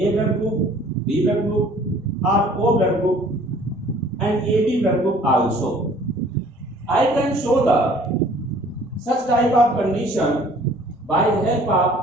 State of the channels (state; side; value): normal; both; correlation 0.54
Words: blood group, B blood group or O blood group and AB blood group also. I can show the such type of condition by the help